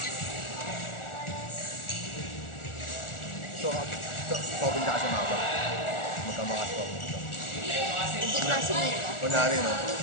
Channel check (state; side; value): late; right; 1.4 ms